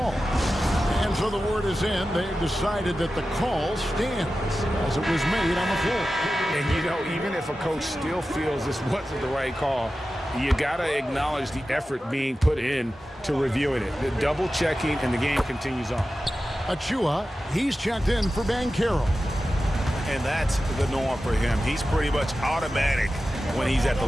And so the word is in. They've decided that the call stands as it was made on the floor. And, even if a coach still feels this wasn't the right call, you got to acknowledge the effort being put in to reviewing it. The double checking, and the game continues on. Achua, he's checked in for Banchero. And that's the norm for him. He's pretty much automatic when he's at the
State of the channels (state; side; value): normal; both; correlation 0.93